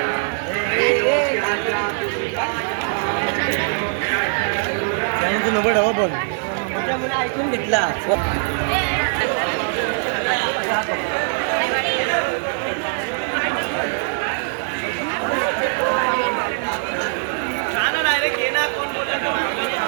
तू नंबर हवा पण त्यामुळे ऐकून घेतला डायरेक्ट ये ना कोण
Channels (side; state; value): left; silent; 65 dB below the other